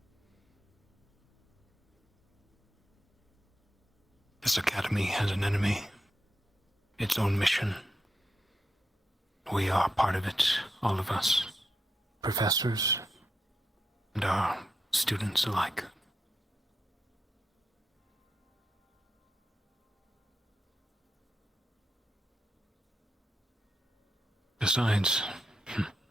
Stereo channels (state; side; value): normal; both; correlation 0.85